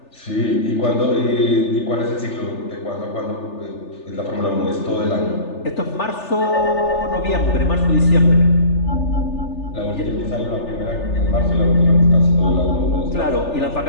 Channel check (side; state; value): right; late; 3.4 ms